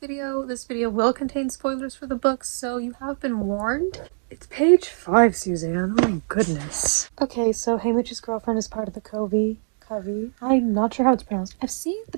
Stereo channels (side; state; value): left; silent; digital silence